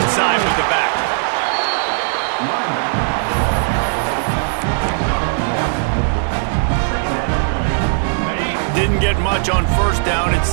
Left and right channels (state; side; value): silent; left; 56 dB below the other